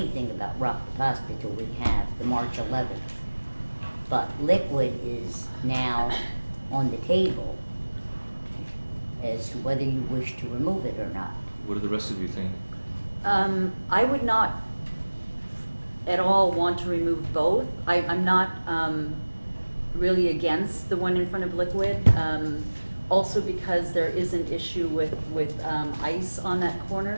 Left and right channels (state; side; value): inverted; both; correlation -1.00